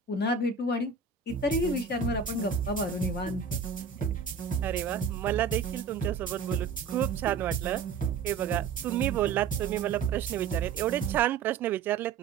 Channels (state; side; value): quieter; left; 5.7 dB